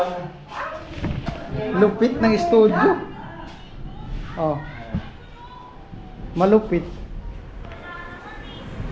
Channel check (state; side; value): identical; both; correlation 1.00